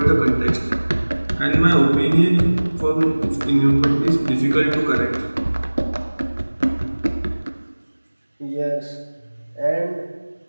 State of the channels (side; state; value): both; inverted; correlation -1.00